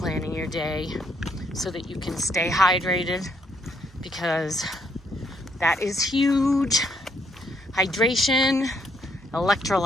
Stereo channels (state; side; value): normal; both; correlation 0.72